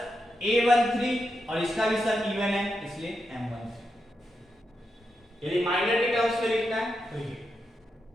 A13 और इसका भी सब इवन है इसलिए M13। यदि माइनर के टर्म्स में लिखना है तो ये,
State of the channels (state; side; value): normal; both; correlation 0.85